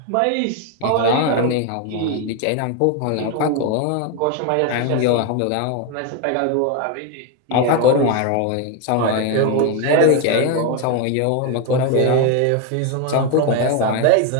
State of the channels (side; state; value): both; different; correlation 0.01